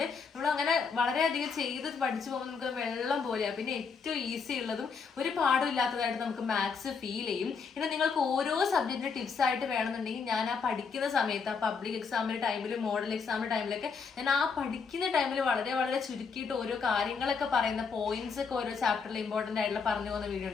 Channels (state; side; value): quieter; right; 5.5 dB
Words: നമ്മൾ അങ്ങനെ വളരെയധികം ചെയ്ത് പഠിച്ചു പോകുമ്പോൾ നമുക്ക് വെള്ളം പോലെയാണ്. പിന്നെ ഏറ്റവും ഈസി ഉള്ളതും ഒരു പാടും ഇല്ലാത്തതായിട്ട് നമുക്ക് മാത്സ് ഫീൽ ചെയ്യും. പിന്നെ നിങ്ങൾക്ക് ഓരോ സബ്ജക്റ്റിന്റെ ടിപ്സ് ആയിട്ട് വേണമെന്നുണ്ടെങ്കിൽ ഞാൻ ആ പഠിക്കുന്ന സമയത്ത്, ആ പബ്ലിക് എക്സാമിന്റെ ടൈമിൽ, മോഡൽ എക്സാമിന്റെ ടൈമിലൊക്കെ ഞാൻ ആ പഠിക്കുന്ന ടൈമിൽ വളരെ വളരെ ചുരുക്കിയിട്ട് ഓരോ കാര്യങ്ങളൊക്കെ പറയുന്ന പോയിന്റ്സ് ഒക്കെ ഓരോ ചാപ്റ്ററിൽ ഇമ്പോർട്ടന്റ് ആയിട്ടുള്ള പറഞ്ഞു പോകുന്ന വീഡിയോ